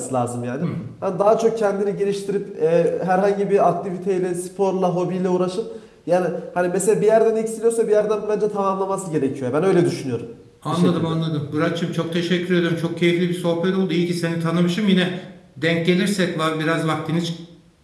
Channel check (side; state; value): both; identical; correlation 1.00